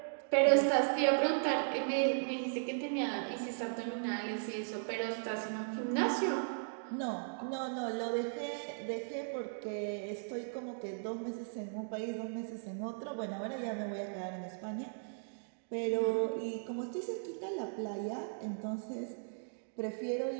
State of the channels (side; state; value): left; silent; digital silence